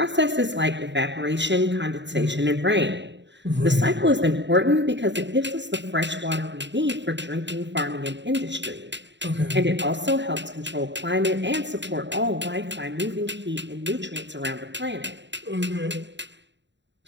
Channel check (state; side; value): late; left; 0.52 ms